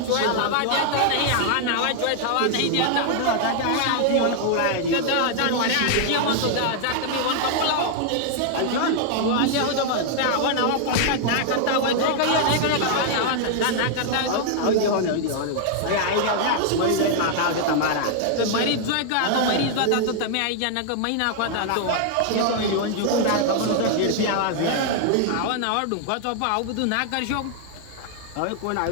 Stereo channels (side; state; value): both; different; correlation 0.00